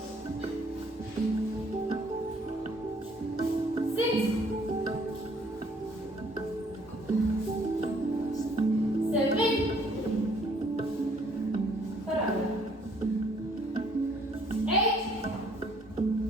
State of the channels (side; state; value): both; normal; correlation 0.62